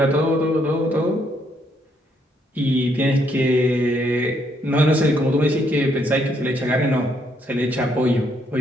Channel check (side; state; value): both; normal; correlation 0.72